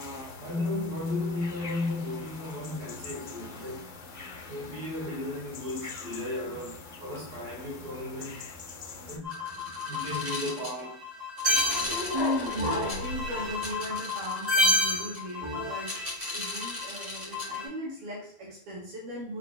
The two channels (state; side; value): late; left; 12 ms